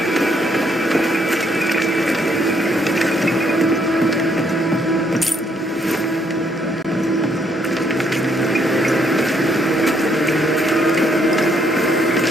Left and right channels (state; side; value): normal; both; correlation 0.71